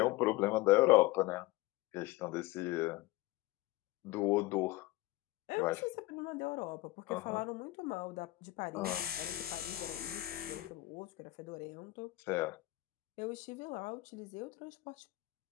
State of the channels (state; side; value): quieter; right; 18.9 dB